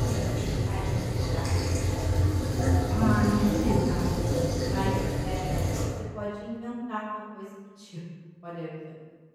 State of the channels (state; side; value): identical; both; correlation 1.00